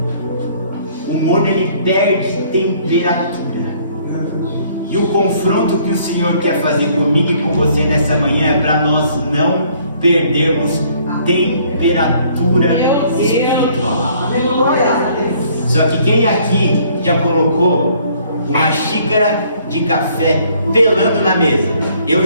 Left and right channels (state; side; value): inverted; both; correlation -0.61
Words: O morno ele perde temperatura. E o confronto que o Senhor quer fazer comigo e com você nessa manhã é para nós não perdermos temperatura espiritual. Só que quem aqui já colocou uma xícara de café pelando na mesa? Eu